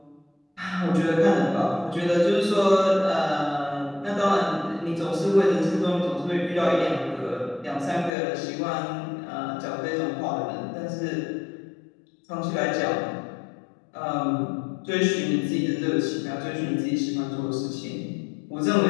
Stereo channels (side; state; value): right; drops out; at 8.1 s